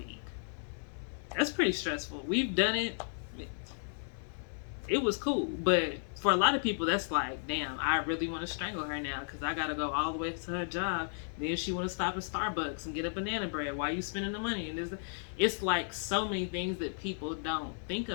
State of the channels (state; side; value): silent; right; 55 dB below the other